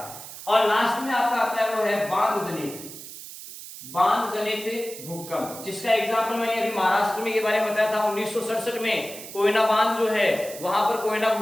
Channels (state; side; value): noise; right; hiss, 13 dB below the sound